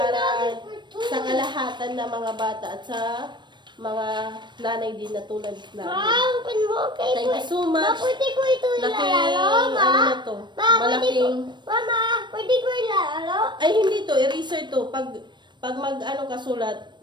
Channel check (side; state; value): left; late; 0.22 ms